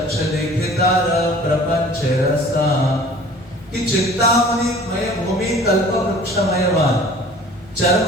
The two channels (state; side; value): normal; both; correlation 0.47